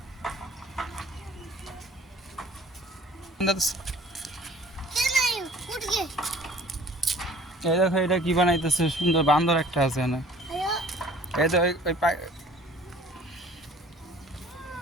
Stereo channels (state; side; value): normal; both; correlation 0.50